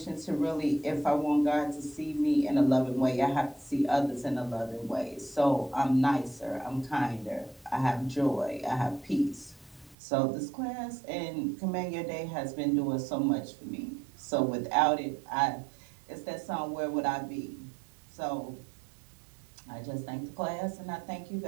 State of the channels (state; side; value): drops out; left; at 10.0 s